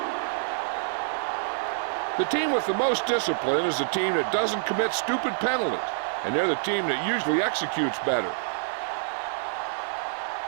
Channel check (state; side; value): silent; left; digital silence